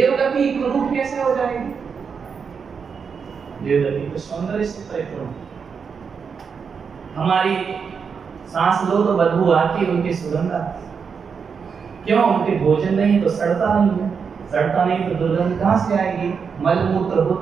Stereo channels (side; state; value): left; quieter; 6.1 dB